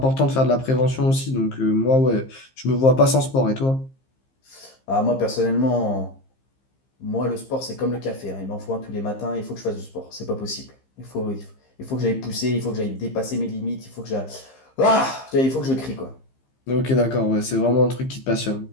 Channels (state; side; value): late; right; 15 ms